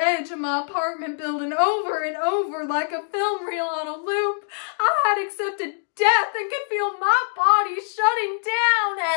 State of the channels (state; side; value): silent; right; digital silence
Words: of my apartment building over and over like a film reel on a loop. I had accepted death and could feel my body shutting down.